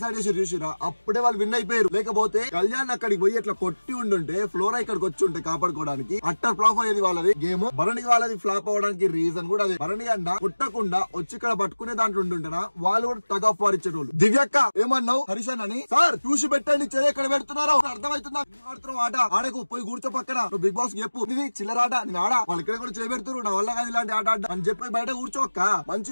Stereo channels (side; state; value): both; inverted; correlation -1.00